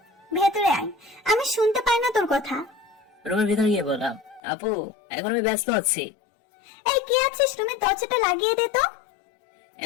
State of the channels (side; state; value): right; drops out; at 4.4 s